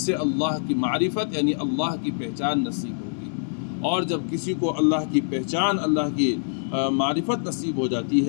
اللہ کی معرفت یعنی اللہ کی پہچان نصیب ہوگی، اور جب کسی کو اللہ کی پہچان، اللہ کی معرفت نصیب ہو جاتی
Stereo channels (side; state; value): right; silent; 62 dB below the other